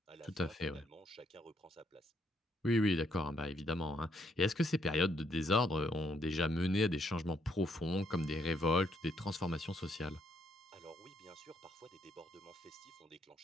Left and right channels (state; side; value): normal; both; correlation 0.73